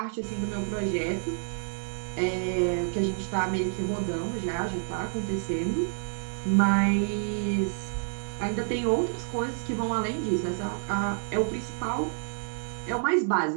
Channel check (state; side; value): silent; left; digital silence